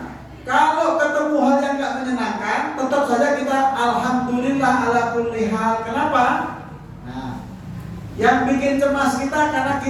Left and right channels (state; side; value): identical; both; correlation 1.00